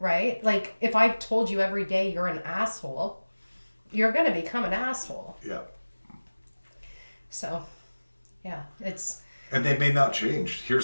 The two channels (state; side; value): inverted; both; correlation -1.00